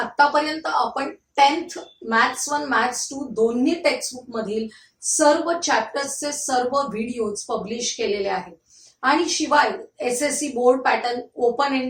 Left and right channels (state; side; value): identical; both; correlation 1.00